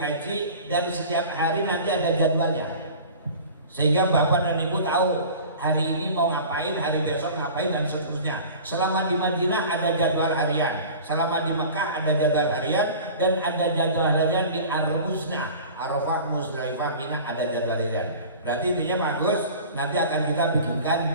dan setiap hari nanti ada jadwalnya, sehingga Bapak dan Ibu tahu hari ini mau ngapain, hari besok ngapain, dan seterusnya. Selama di Madinah ada jadwal harian, selama di Mekah ada jadwal harian, dan ada jadwal harian di Ar-Musna, Arafah, Musdalifah, Mina ada jadwal harian. Berarti intinya bagus, nanti akan kita bikinkan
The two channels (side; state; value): both; inverted; correlation -0.39